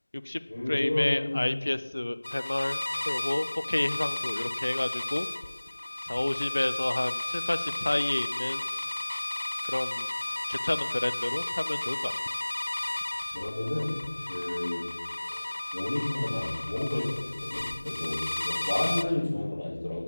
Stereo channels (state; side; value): inverted; both; correlation -1.00